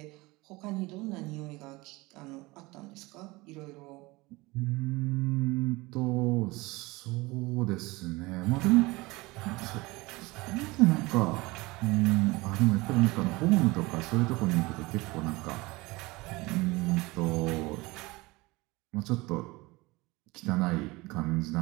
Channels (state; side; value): quieter; left; 22.5 dB